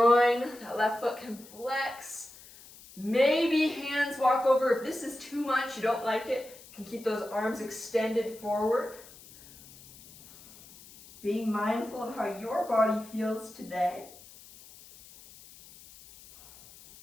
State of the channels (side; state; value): left; noise; hiss, 21 dB below the sound